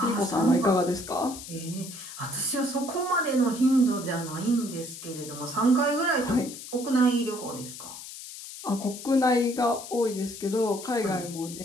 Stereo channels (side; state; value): left; noise; hiss, 12 dB below the sound